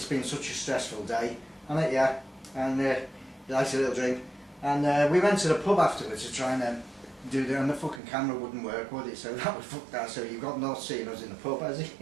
been such a stressful day, hasn't it? Yeah. And he likes a little drink. And we went to the pub afterwards to try and do that, and the fucking camera wouldn't work, would it? So that would fuck that. So you've got not seen us in the pub, has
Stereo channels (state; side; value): drops out; left; at 8.0 s